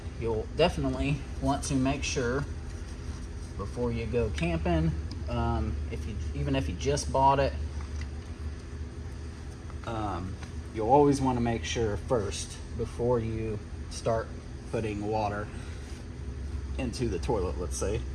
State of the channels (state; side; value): identical; both; correlation 1.00